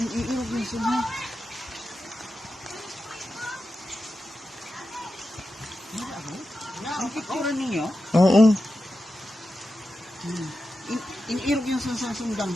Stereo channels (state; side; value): normal; both; correlation 0.91